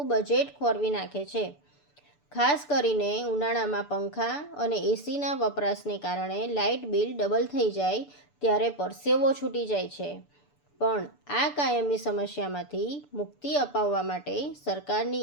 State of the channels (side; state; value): right; late; 6.9 ms